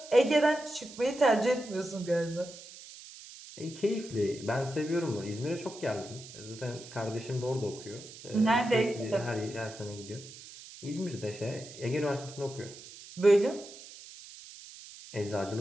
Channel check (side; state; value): right; noise; hiss, 16 dB below the sound